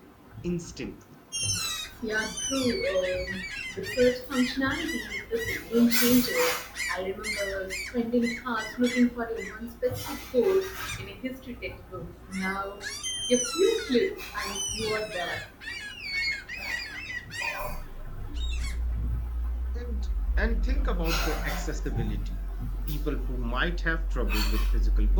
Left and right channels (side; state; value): both; identical; correlation 1.00